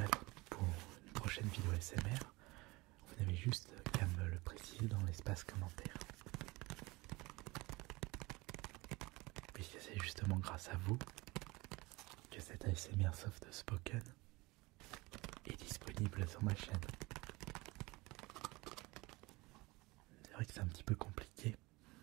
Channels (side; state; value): left; quieter; 22.9 dB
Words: pour une prochaine vidéo ASMR, vous n'avez juste qu'à me le préciser dans l'espace commentaire. Puisque c'est justement grâce à vous que cette ASMR soft spoken est disponible sur ma chaîne. C'est vrai que c'est un petit peu compliqué